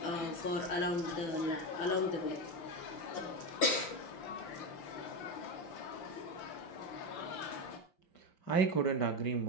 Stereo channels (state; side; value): late; right; 6.1 ms